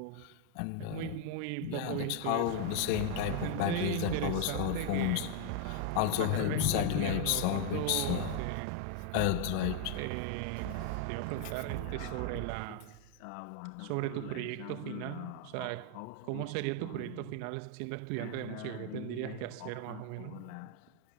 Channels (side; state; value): both; different; correlation 0.00